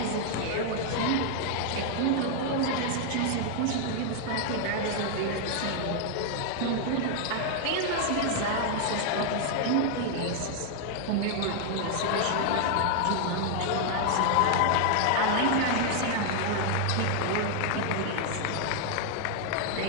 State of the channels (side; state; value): both; different; correlation 0.00